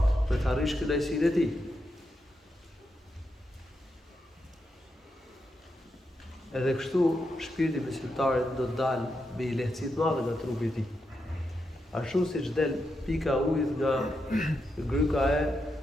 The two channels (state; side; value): normal; both; correlation 0.85